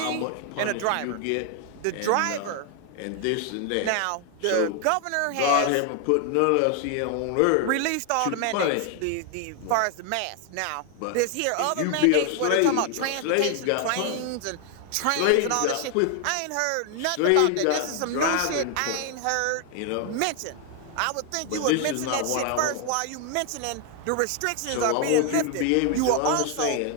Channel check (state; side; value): different; both; correlation 0.00